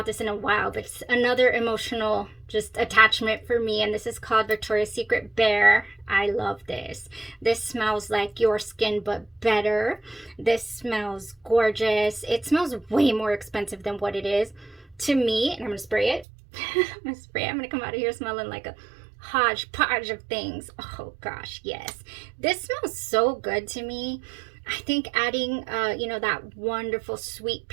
this in a while, but it's another emotional just attachment for me, and this is called Victoria's Secret Bear. I love this. This smells like your skin, but better. This smells gorgeous. It smells way more expensive than what it is to me, and I'm gonna spray it. I'm gonna come out of here smelling like a hodgepodge of things. Oh gosh, yes. This smells so good to me. I think adding, you know, that wonderful sweet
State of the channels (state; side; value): drops out; left; at 16.2 s